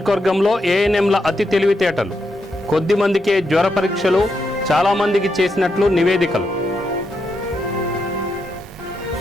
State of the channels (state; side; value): normal; both; correlation 0.83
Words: ఏఎన్ఎంల అతి తెలివితేటలు. కొద్ది మందికే జ్వర పరీక్షలు, చాలామందికి చేసినట్లు నివేదికలు.